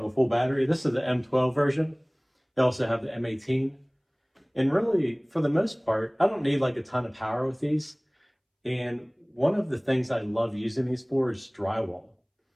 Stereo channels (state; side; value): identical; both; correlation 1.00